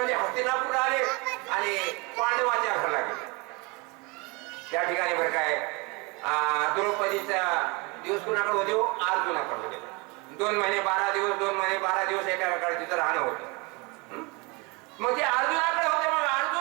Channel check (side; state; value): left; quieter; 28.0 dB